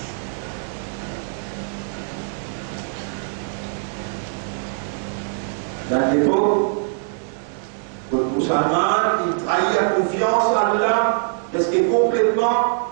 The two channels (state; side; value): silent; left; digital silence